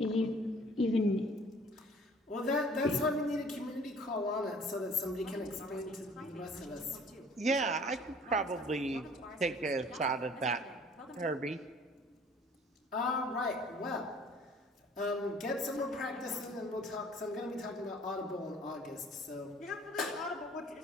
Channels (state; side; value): normal; both; correlation 0.52